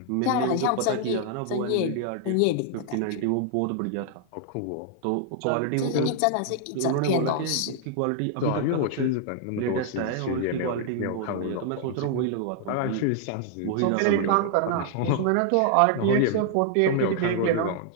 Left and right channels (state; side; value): different; both; correlation 0.00